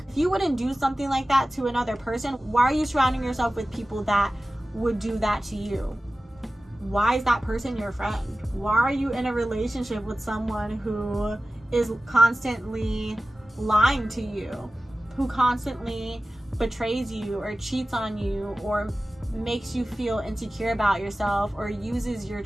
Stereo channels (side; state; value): both; normal; correlation 0.96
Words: if you wouldn't do something like that to another person, why are you surrounding yourself with people that would do that to you? Why is that person your friend? Why are you in a relationship with someone who is constantly lying to you, who constantly betrays you or cheats on you or makes you feel insecure about yourself, or uses your